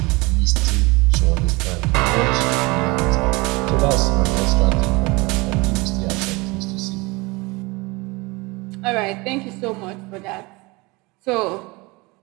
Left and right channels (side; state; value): left; quieter; 24.7 dB